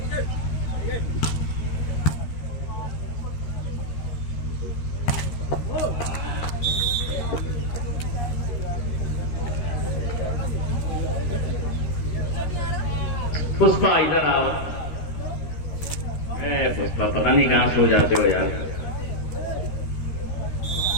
Pushpa इधर आओ। पुष्पा पता नहीं कहां सो जाते हो यार।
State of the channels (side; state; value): right; late; 13 ms